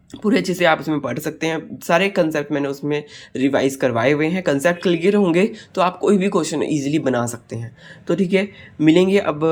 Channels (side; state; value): both; identical; correlation 1.00